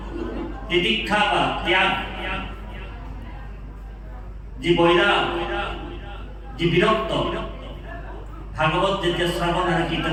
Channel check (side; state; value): both; identical; correlation 1.00